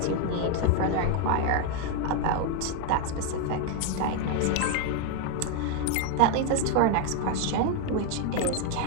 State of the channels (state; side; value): different; both; correlation 0.01